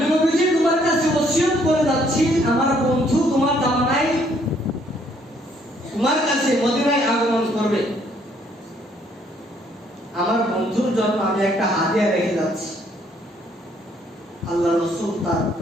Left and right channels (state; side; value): normal; both; correlation 0.66